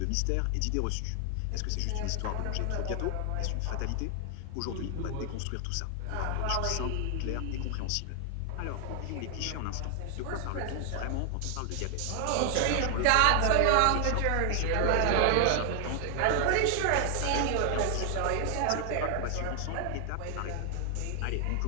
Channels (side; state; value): both; different; correlation 0.00